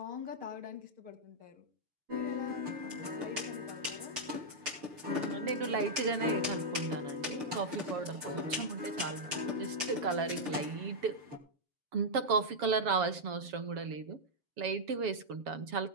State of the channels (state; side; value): late; left; 6.6 ms